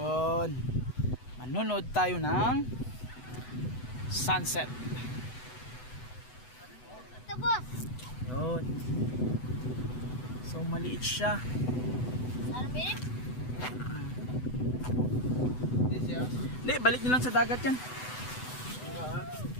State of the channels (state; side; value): late; right; 8.0 ms